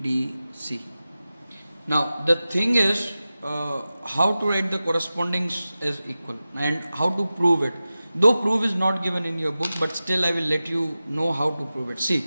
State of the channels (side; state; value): both; inverted; correlation -0.95